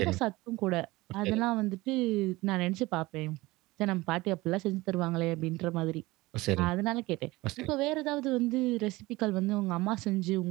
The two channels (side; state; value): left; quieter; 20.5 dB